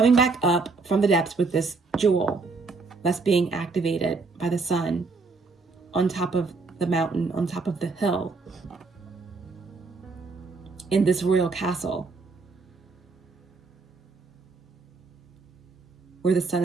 back up from the depths with this jewel that's being activated by the sun on top of the mountain, on top of the hill, in this royal castle where the sun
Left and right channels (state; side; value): quieter; left; 4.1 dB